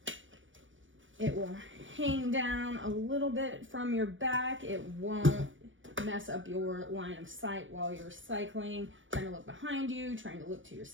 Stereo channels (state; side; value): late; left; 0.56 ms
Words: It will hang down a little bit from your back. It won't mess up your line of sight while you're cycling, trying to look behind you, trying to look to your